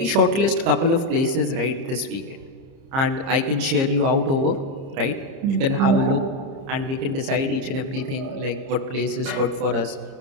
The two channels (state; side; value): late; left; 30 ms